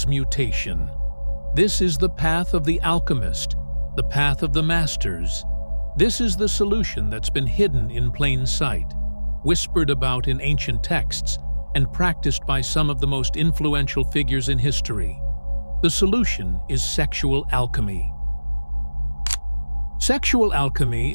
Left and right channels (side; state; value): both; inverted; correlation -1.00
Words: This is the path of the alchemist, the path of the masters. This is the solution that's been hidden in plain sight, whispered about in ancient texts, and practiced by some of the most influential figures in history. The solution is sexual alchemy. Sexual